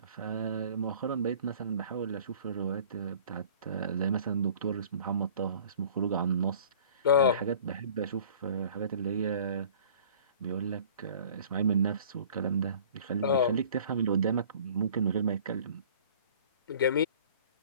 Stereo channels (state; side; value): inverted; both; correlation -0.48